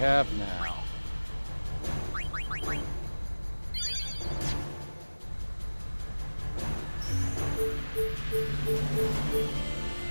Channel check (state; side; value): inverted; both; correlation -1.00